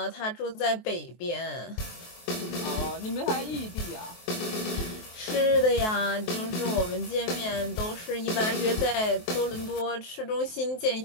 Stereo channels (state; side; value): late; right; 23 ms